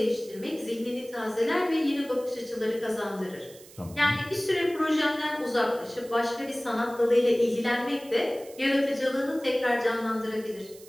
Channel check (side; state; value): right; noise; hiss, 21 dB below the sound